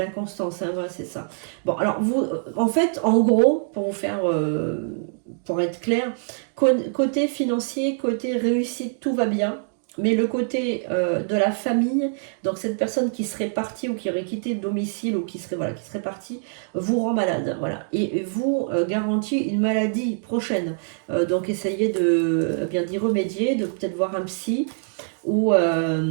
hein, voilà, c'est ça. Bon, alors vous, en fait, en gros, pour vous faire, pour être clair, côté financier, côté réussite, tout va bien. Mais le côté de la famille, donc cette personne qui serait partie ou qui aurait quitté le domicile ou qui serait, voilà, qui serait partie, vous rend malade. Voilà. Et vous garantit une maladie prochaine. Donc essayez de bien d'y remédier, de peut-être voir un psy ou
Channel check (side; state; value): left; silent; digital silence